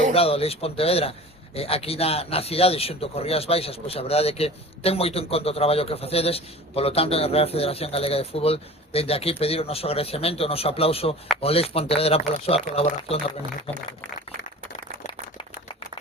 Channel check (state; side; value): normal; both; correlation 0.40